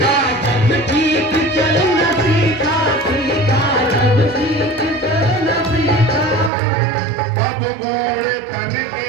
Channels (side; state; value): left; drops out; at 6.5 s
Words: जब ठीक चलना सीखा, सीखा जब ठीक चलना सीखा। तब बूढ़े तन के